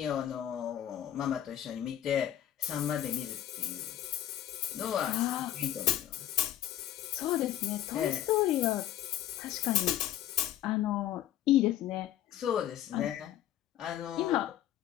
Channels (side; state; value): right; quieter; 12.0 dB